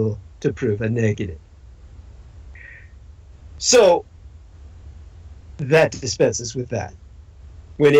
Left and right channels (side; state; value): both; identical; correlation 1.00